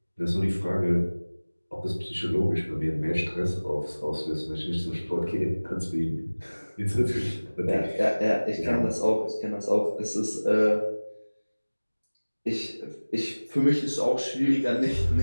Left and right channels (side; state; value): both; inverted; correlation -1.00